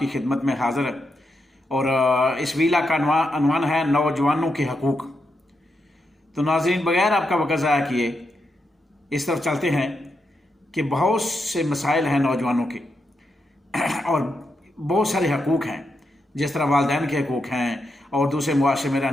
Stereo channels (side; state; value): both; normal; correlation 0.84